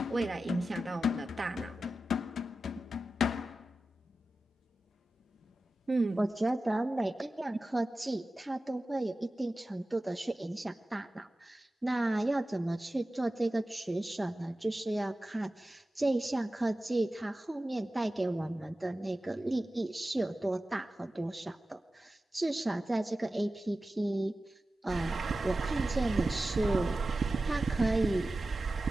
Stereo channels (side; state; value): both; normal; correlation 0.94